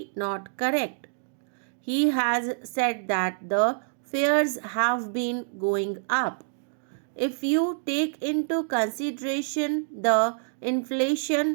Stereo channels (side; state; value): left; silent; digital silence